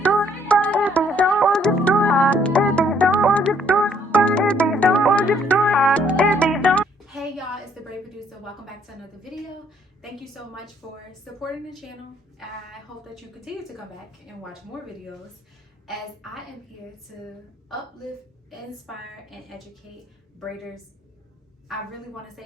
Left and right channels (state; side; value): normal; both; correlation 0.65